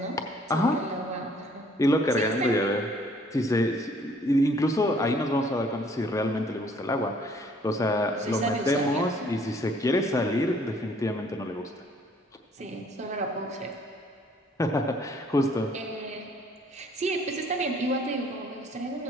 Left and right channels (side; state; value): both; normal; correlation 0.60